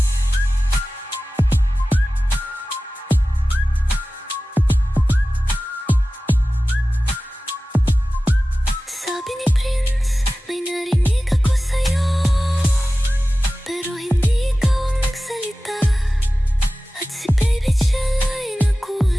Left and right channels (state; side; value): normal; both; correlation 0.96